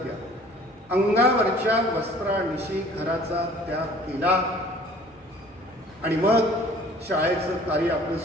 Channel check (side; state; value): both; normal; correlation 0.51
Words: घ्या, अंगावरच्या वस्त्रानिशी घराचा त्याग केला आणि मग शाळेचं कार्य आपलं